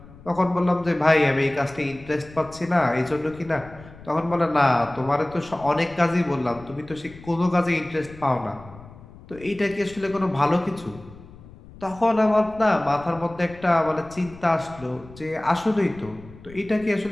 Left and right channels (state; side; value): noise; left; rumble, 20 dB below the sound